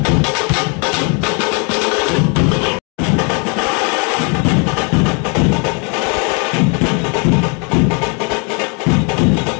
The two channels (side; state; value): right; quieter; 34.7 dB